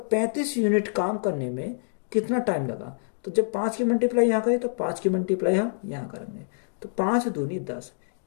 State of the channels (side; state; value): right; silent; digital silence